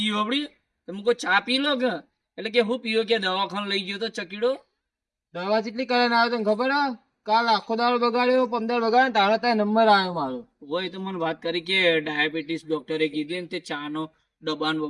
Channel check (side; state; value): both; identical; correlation 1.00